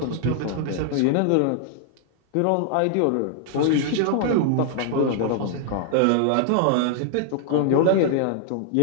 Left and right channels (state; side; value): different; both; correlation -0.01